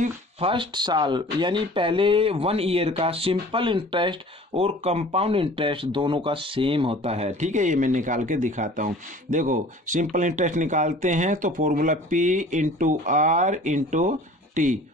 फर्स्ट साल यानी पहले 1 ईयर का सिंपल इंटरेस्ट और कंपाउंड इंटरेस्ट दोनों का सेम होता है। ठीक है, ये मैं निकाल के दिखाता हूँ। देखो सिंपल इंटरेस्ट निकालते हैं तो formula P into R into T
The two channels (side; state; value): both; normal; correlation 0.46